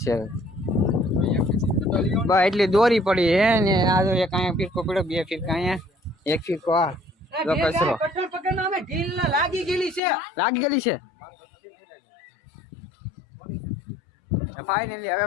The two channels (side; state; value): right; drops out; at 10.0 s